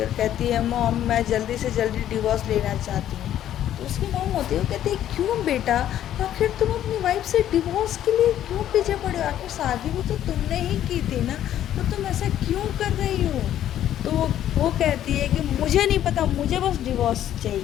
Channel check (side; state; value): right; quieter; 11.5 dB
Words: और कहती है मॉम मैं जल्दी से जल्दी डिवोर्स लेना चाहती हूँ। तो उसकी मॉम होती है वो कहती है क्यों बेटा, आखिर तुम अपनी वाइफ से डिवोर्स के लिए क्यों पीछे पड़े हो, आखिर शादी भी तो तुमने ही की थी ना, तो तुम ऐसा क्यों कर रही हो। तो वो कहती है कि मुझे नहीं पता, मुझे बस डिवोर्स